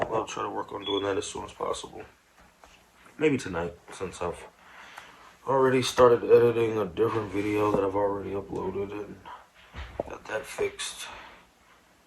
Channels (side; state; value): both; identical; correlation 1.00